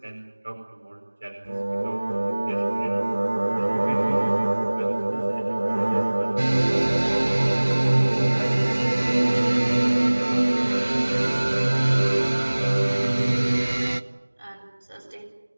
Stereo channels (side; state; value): both; inverted; correlation -1.00